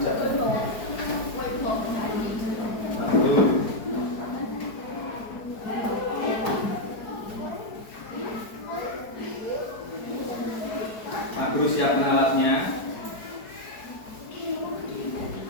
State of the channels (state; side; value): late; right; 4.5 ms